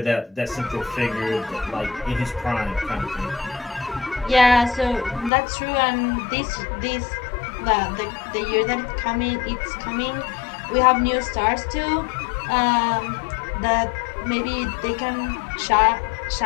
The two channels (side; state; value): right; drops out; at 5.3 s